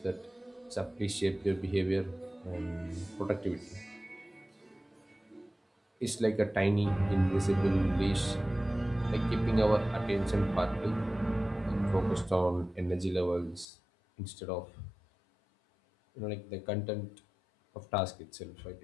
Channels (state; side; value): drops out; right; at 13.7 s